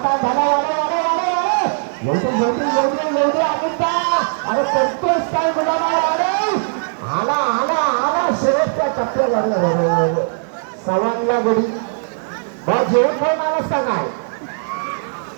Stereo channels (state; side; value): silent; left; digital silence